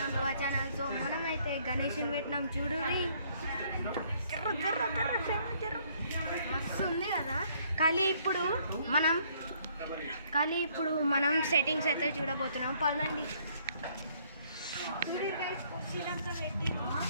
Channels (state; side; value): inverted; both; correlation -0.65